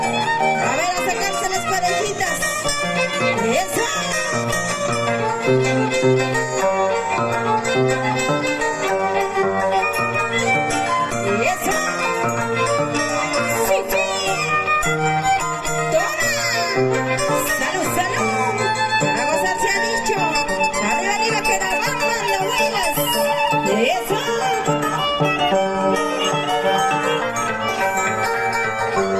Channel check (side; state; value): both; identical; correlation 1.00